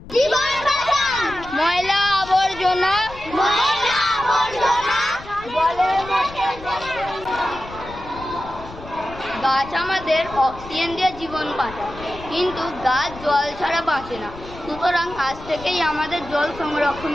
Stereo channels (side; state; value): left; noise; rumble, 16 dB below the sound